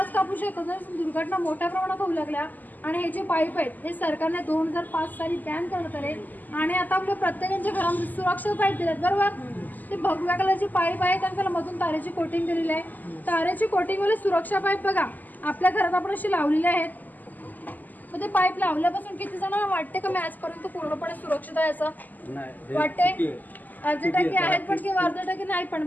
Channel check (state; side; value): late; right; 0.084 ms